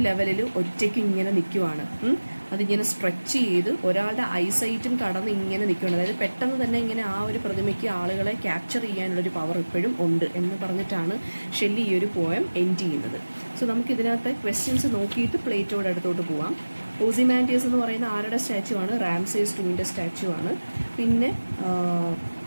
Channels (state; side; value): inverted; both; correlation -1.00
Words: ലെവലിൽ ഒറ്റയ്ക്ക് ഇങ്ങനെ നിൽക്കുവാണ്. അതിങ്ങനെ സ്ട്രെച്ച് ചെയ്ത് ഒരാളുടെ ഐസൈറ്റും കടന്ന് ഇങ്ങനെ നിൽക്കുകയാണ്. അതായത് പെട്ടെന്ന് തന്നെ ഇങ്ങനെ ആ ഒരു പ്രതിമയ്ക്ക് ആളുകളെ ക്യാപ്ചർ ചെയ്യാനുള്ളൊരു പവർ ഇപ്പോഴും ഉണ്ട് എന്ന് പറഞ്ഞിട്ടാണ് ഷെല്ലി ഈ ഒരു പോയം എൻഡ് ചെയ്യുന്നത്. സോ നമുക്കിതിനകത്തെ ക്വസ്റ്റ്യൻസ് നോക്കിയിട്ട് പ്ലേറ്റോയുടെ അടുത്തോട്ട് പോവാം. ഓസിമാൻഡിയസ് എന്ന് പറയുന്ന ആരുടെ സ്റ്റാച്യു ആണ്, റാംസേസ് 2ൻ്റെ സ്റ്റാച്യു ആണ്. പിന്നെ